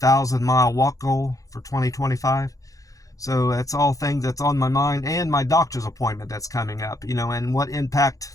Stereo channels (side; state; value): right; late; 0.17 ms